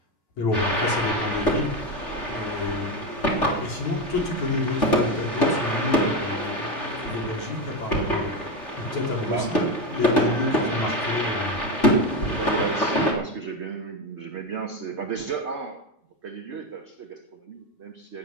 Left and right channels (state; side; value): late; right; 3.4 ms